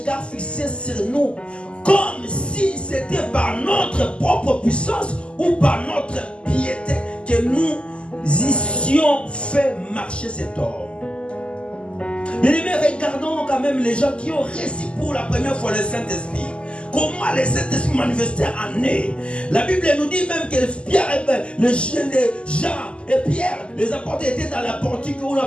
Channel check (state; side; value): late; right; 0.053 ms